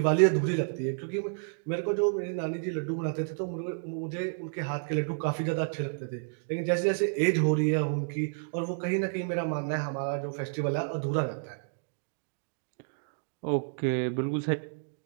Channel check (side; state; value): left; silent; digital silence